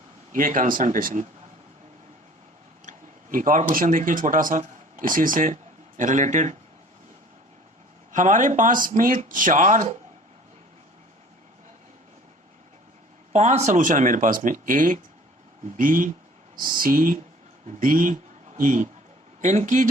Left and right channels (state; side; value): normal; both; correlation 0.49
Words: ये कंसंट्रेशन। एक और क्वेश्चन देखिए छोटा सा इसी से रिलेटेड। हमारे पास में 5 सॉल्यूशन है मेरे पास में, A B C D E। इनकी